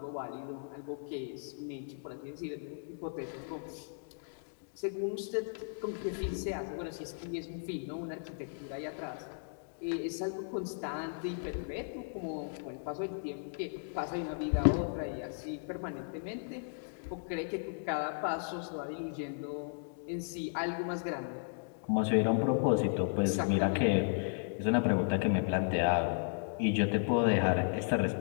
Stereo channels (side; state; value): right; silent; digital silence